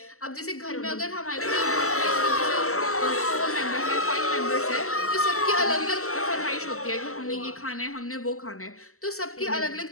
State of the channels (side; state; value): right; late; 0.63 ms